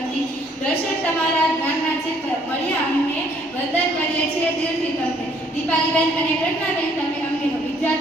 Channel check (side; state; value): both; normal; correlation 0.64